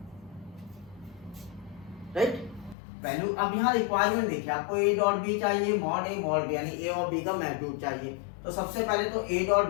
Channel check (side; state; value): right; drops out; at 2.8 s